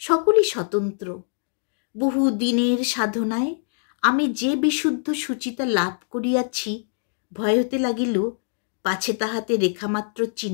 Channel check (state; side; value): silent; right; digital silence